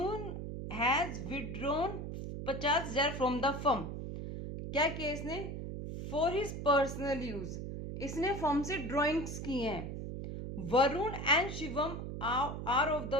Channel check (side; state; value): right; noise; hum, 6 dB below the sound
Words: has withdrawn 50,000 from the firm. क्या किया इसने, फॉर हिज पर्सनल यूज, इसने फर्म से ड्रॉइंग्स की हैं। Varun and Shivam are of the